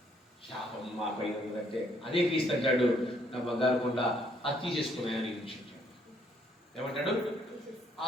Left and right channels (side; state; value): both; normal; correlation 0.68